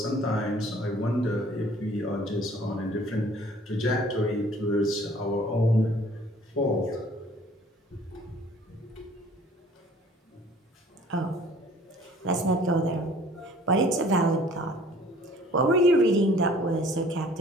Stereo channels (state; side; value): normal; both; correlation 0.53